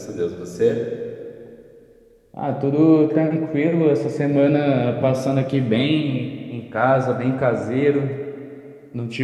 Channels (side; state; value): both; identical; correlation 1.00